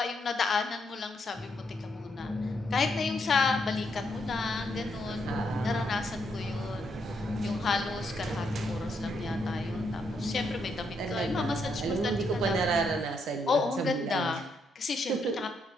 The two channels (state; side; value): normal; both; correlation 0.77